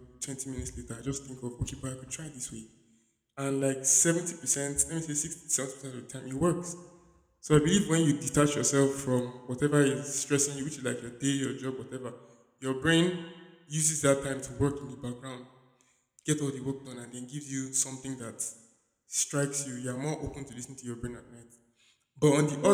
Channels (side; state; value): both; identical; correlation 1.00